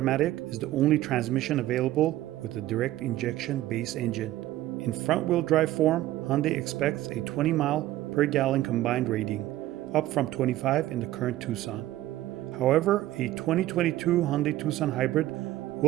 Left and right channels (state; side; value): quieter; left; 15.1 dB